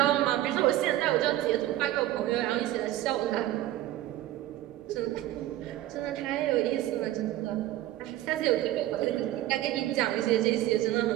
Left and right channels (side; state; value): left; quieter; 14.6 dB